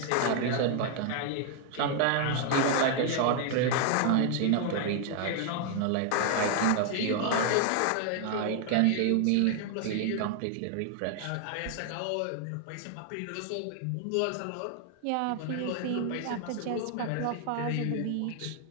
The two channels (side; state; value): both; different; correlation 0.00